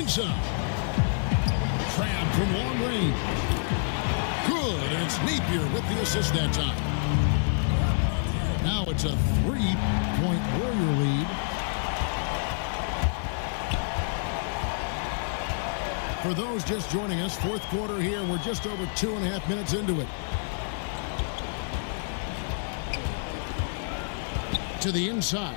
Crabb from long range. Good, and it's Napier with the assist that time. Now it's a 3-point Warrior lead. For those just joining us, fourth quarter here. We're just over 2.5 minutes into it. To the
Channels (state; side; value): silent; right; 59 dB below the other